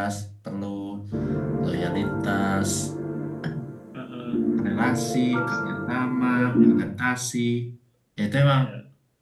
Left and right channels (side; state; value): both; identical; correlation 1.00